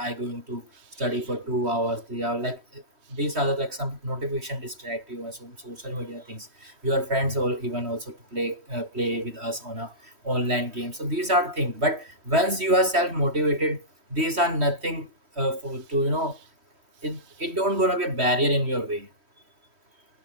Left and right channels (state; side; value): late; left; 3.1 ms